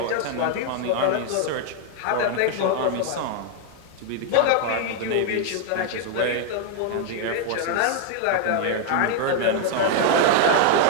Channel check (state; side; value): different; both; correlation 0.00